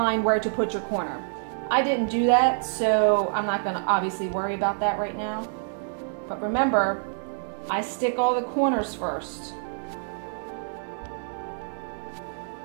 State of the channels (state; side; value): silent; left; digital silence